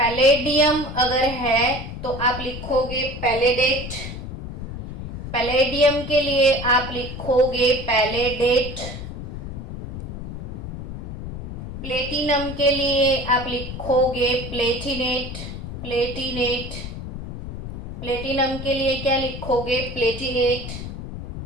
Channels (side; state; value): left; noise; rumble, 8 dB below the sound